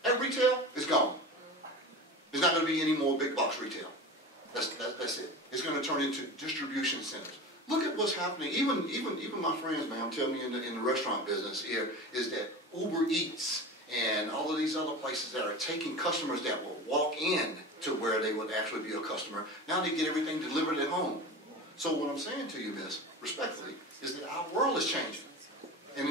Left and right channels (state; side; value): normal; both; correlation 0.31